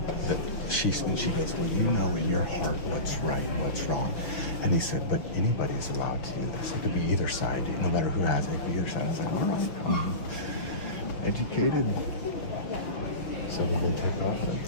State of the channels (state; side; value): late; right; 6.4 ms